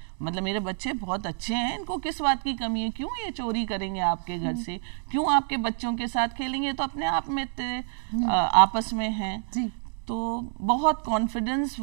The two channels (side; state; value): left; silent; 55 dB below the other